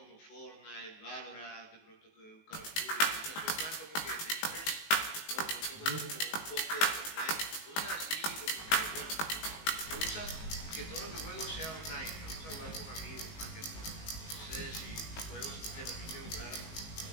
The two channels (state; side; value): late; right; 19 ms